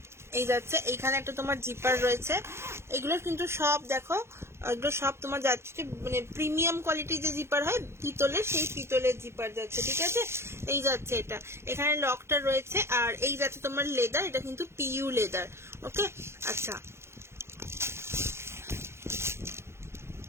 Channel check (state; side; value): late; left; 0.12 ms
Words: এই যাচ্ছে, এইখানে একটা তোমার জিপার রয়েছে। এগুলো কিন্তু সব দেখো, এগুলো সব তোমার যাচ্ছে মানে প্রিমিয়াম কোয়ালিটির যে জিপার হয় পিতলের, সেই পিতলের জিপার যাচ্ছে, ঠিক আছে? এই যাচ্ছে এটা, এখানে লকটা রয়েছে। আর এই যাচ্ছে তোমার লেদার, এটা কিন্তু পিইউ লেদার, ওকে। আচ্ছা